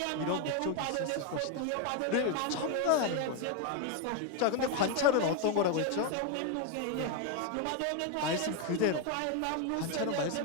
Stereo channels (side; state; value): both; different; correlation 0.02